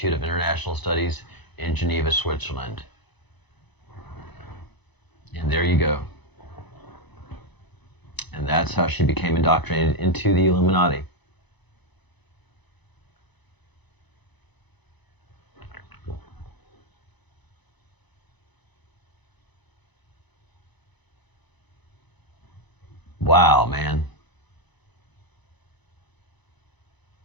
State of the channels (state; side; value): late; right; 1.0 ms